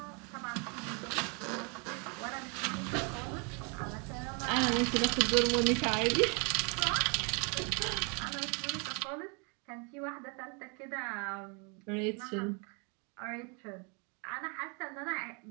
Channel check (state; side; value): quieter; left; 34.7 dB